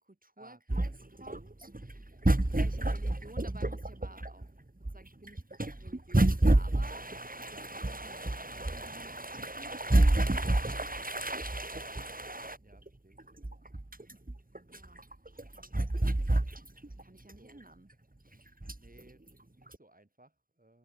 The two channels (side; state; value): left; late; 0.41 ms